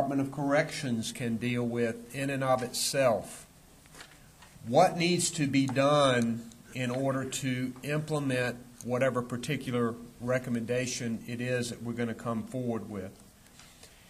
of Corrections can deal with in and of itself? What needs to be done in order to implement whatever particular recommendation it is that we're going to come forward with?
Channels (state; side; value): identical; both; correlation 1.00